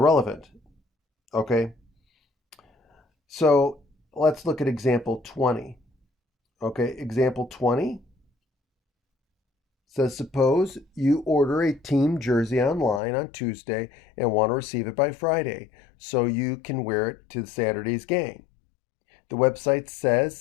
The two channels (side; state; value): right; drops out; at 13.0 s